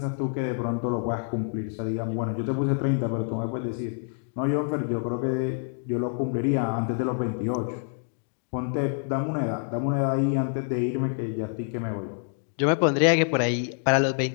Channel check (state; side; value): silent; right; digital silence